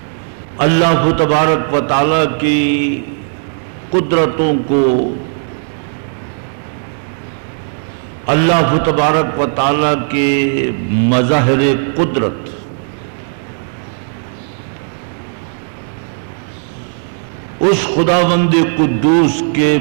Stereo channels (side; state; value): left; silent; 69 dB below the other